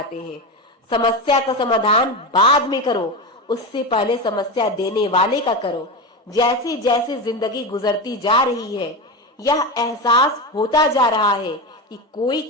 हैं। समस्या का समाधान बाद में करो, उससे पहले समस्या देने वाले का करो। जैसे जैसे जिंदगी गुजरती जा रही है, यह एहसास होता जा रहा है कि कोई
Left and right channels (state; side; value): normal; both; correlation 0.19